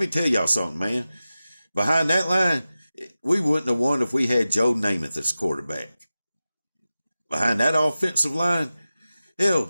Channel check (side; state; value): both; inverted; correlation -0.95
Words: tell y'all something, man. Behind that line, we wouldn't have won if we had Joe Namath as quarterback. Behind that offensive line, hell,